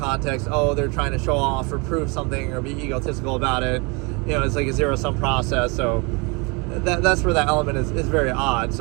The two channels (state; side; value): quieter; left; 29.4 dB